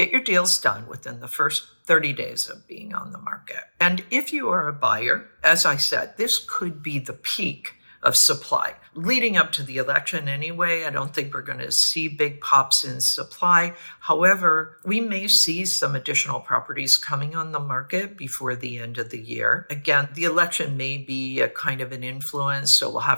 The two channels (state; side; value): inverted; both; correlation -1.00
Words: your deals done within the first 30 days of being on the market. And if you are a buyer, as I said, this could be the peak of supply. Leading up to the election anyway, I don't think we're going to see big pops in supply. However, we may see some additional properties coming on the market before the end of the year. Again, the election may be a kind of an influence, so we'll